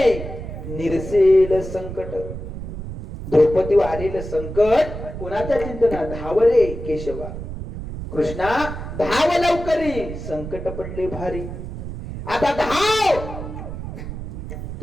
निरसेल संकट. द्रौपदीवर आलेलं संकट कोणाच्या चिंतना? धाव रे केशवा, कृष्णा धाव लवकरी, संकट पडले भारी. आता धाव.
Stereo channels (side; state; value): right; noise; rumble, 8 dB below the sound